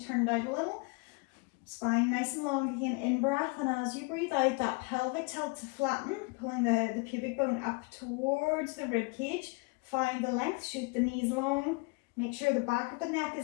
turned out a little. Spine nice and long, again, in breath, and as you breathe out, that pelvic tilt to flatten, pulling the pubic bone up towards the rib cage. Find the length, shoot the knees long, make sure the back of the neck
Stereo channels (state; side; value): quieter; right; 29.4 dB